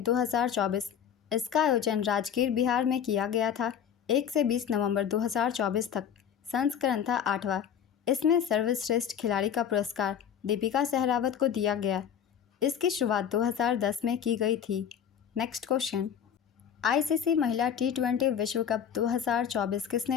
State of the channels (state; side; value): quieter; right; 8.7 dB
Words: 2024। इसका आयोजन राजगीर, बिहार में किया गया था। 1 से 20 नवंबर 2024 तक। संस्करण था 8वां। इसमें सर्वश्रेष्ठ खिलाड़ी का पुरस्कार दीपिका सहरावत को दिया गया। इसकी शुरुआत 2010 में की गई थी। नेक्स्ट क्वेश्चन, आईसीसी महिला T20 विश्व कप 2024